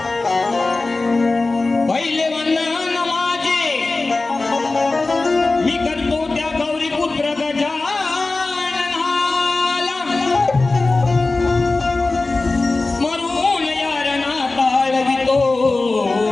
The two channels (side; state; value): right; quieter; 3.4 dB